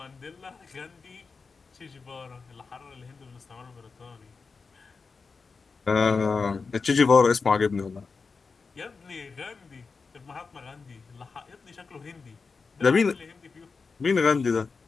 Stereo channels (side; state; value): right; quieter; 4.7 dB